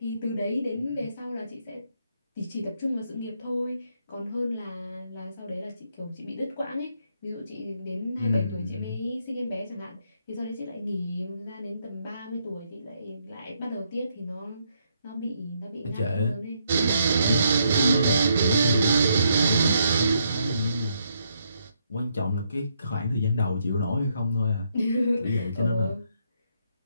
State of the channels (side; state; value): both; inverted; correlation -0.76